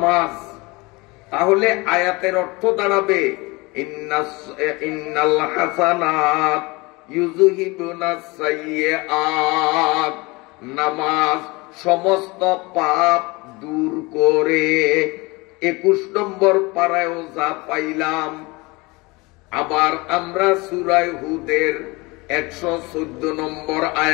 তাহলে আয়াতের অর্থ দাঁড়াবে, ইন্নাল হাসানাত ইউযহিবুনাস সাইয়্যাত, নামাজ সমস্ত পাপ দূর করে। 21 নম্বর পারায়ও যা পাইলাম। আবার আমরা সূরা হুদের 114 নম্বর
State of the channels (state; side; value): quieter; right; 24.8 dB